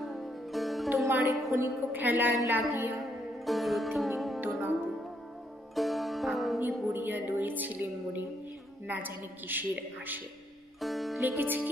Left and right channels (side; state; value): both; normal; correlation 0.74